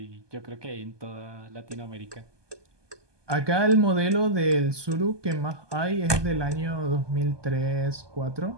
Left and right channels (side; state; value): left; late; 1.2 ms